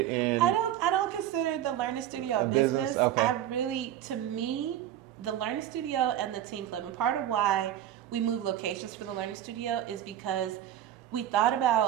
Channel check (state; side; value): quieter; left; 11.5 dB